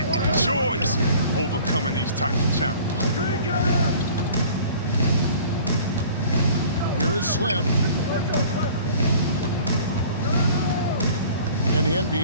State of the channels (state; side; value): inverted; both; correlation -0.48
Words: enjoys overcoming these types of challenges. Here is Slim. And the